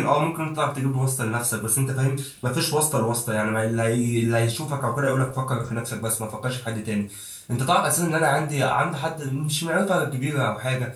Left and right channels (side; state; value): both; identical; correlation 1.00